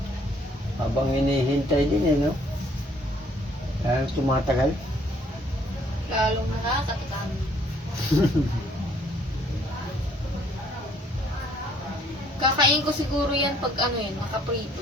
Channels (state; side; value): normal; both; correlation 0.63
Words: Habang hinihintay din eh, no? Kaya tumatagal. Lalong nakakatakam. Kakain ko siguro yan pag